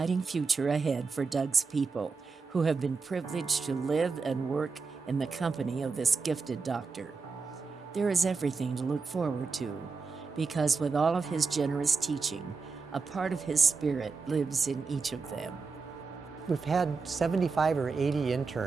future ahead for Doug's people, who have been privileged to live and work in the company of this gifted doctor. There is everything to look forward to, because with all of his generous teaching, a part of his spirit lives in each of them. We've had 75 or 80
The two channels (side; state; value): left; quieter; 4.6 dB